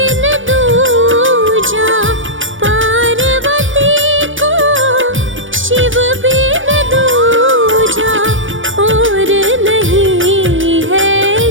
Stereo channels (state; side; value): late; left; 0.57 ms